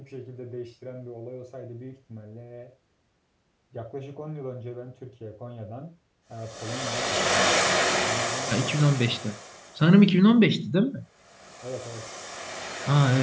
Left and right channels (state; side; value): identical; both; correlation 1.00